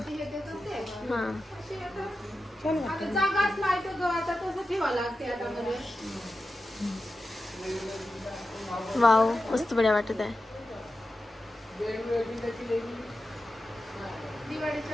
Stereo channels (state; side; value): normal; both; correlation 0.92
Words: हा. जागाच नाही तर आता तसं ठेवा लागते आता मध्ये. वाव मस्त बढ्या वाटत आहे.